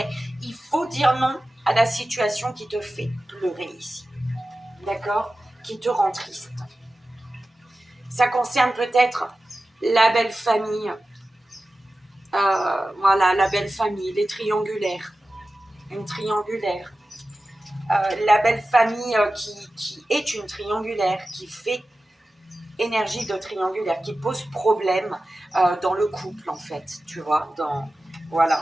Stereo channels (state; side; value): normal; both; correlation 0.95